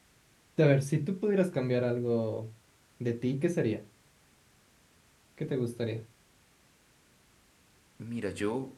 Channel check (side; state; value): both; identical; correlation 1.00